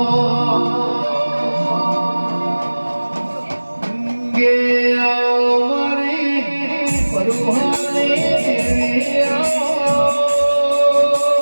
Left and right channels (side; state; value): both; inverted; correlation -1.00